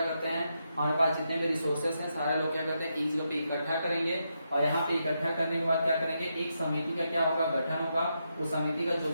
करते हैं, हमारे पास जितने भी रिसोर्सेस हैं सारे लोग क्या करते हैं एक जगह पे इकट्ठा करेंगे और यहाँ पे इकट्ठा करने के बाद क्या करेंगे, एक समिति का क्या होगा, गठन होगा। उस समिति का जो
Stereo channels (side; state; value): both; inverted; correlation -0.83